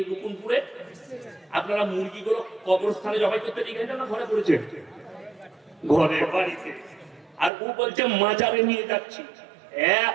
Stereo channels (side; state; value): left; drops out; at 7.5 s